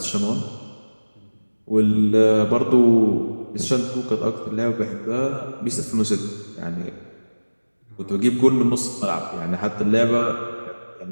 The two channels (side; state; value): both; inverted; correlation -1.00